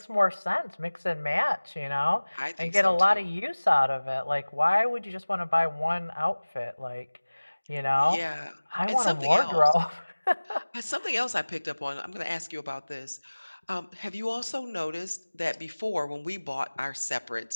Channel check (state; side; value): inverted; both; correlation -1.00